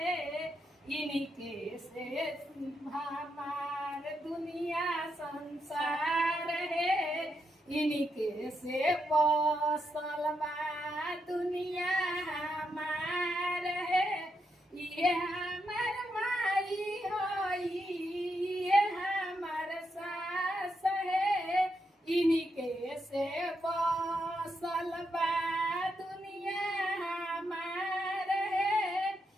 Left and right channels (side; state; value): both; normal; correlation 0.82